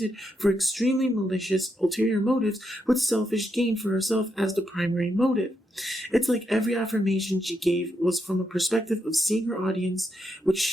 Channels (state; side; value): normal; both; correlation 0.81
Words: for extremely malicious ulterior motives with selfish gain for herself as the primary motive. It's like every affirmation she gave was from a perspective of seeing her audience, which